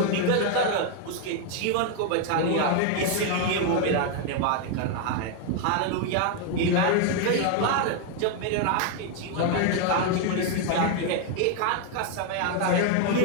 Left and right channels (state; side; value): different; both; correlation 0.01